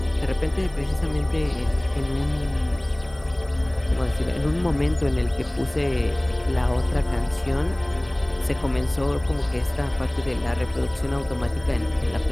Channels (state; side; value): noise; right; hiss, 28 dB below the sound